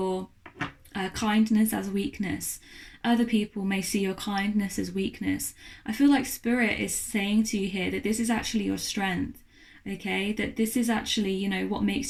kindness as weakness. Other people may see your kindness as weakness. I feel like Spirit is saying to you here that this is actually your strength. Okay, that this is actually, you know, what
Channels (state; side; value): identical; both; correlation 1.00